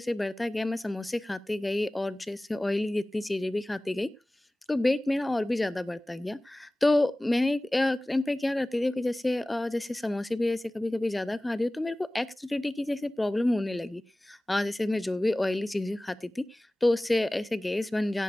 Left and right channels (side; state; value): both; normal; correlation 0.98